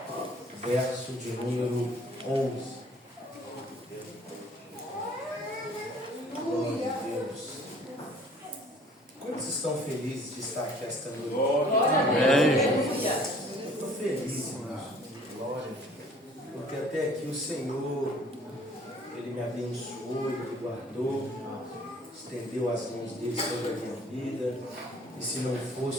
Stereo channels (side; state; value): both; normal; correlation 0.54